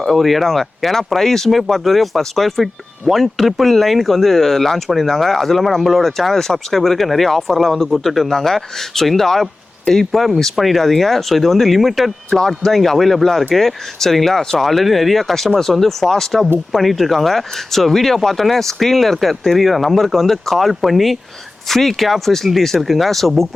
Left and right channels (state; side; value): quieter; right; 3.0 dB